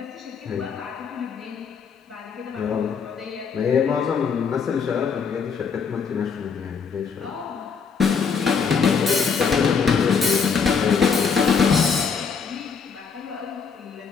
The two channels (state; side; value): quieter; right; 6.0 dB